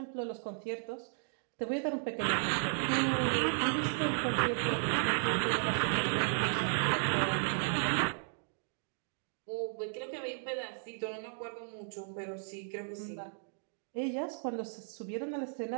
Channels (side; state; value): left; silent; digital silence